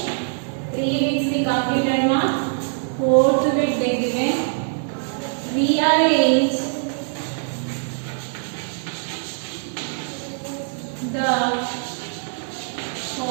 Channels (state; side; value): silent; left; digital silence